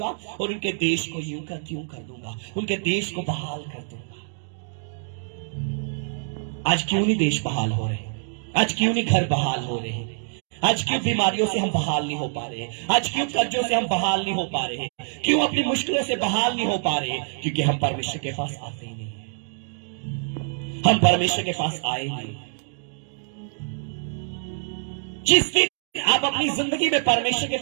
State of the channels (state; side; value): silent; left; digital silence